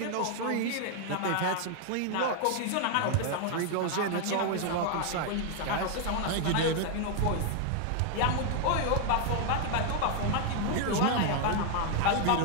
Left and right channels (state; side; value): different; both; correlation 0.00